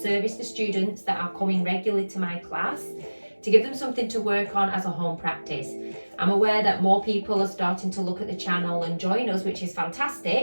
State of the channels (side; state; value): both; inverted; correlation -1.00